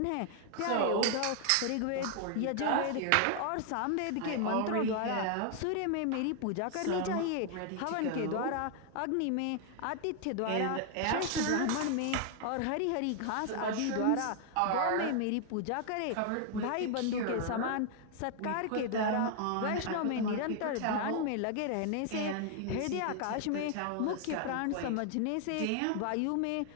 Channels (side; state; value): both; different; correlation 0.00